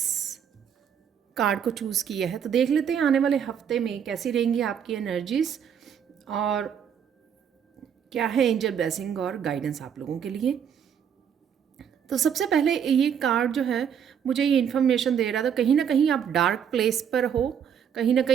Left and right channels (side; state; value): left; quieter; 8.1 dB